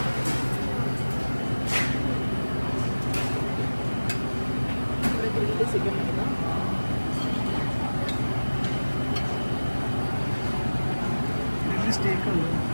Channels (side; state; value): both; inverted; correlation -1.00